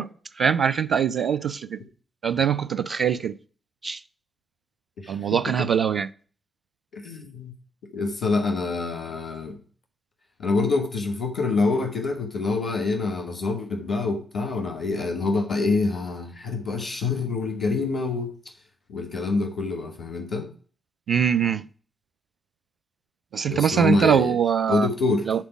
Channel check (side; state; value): both; normal; correlation 0.67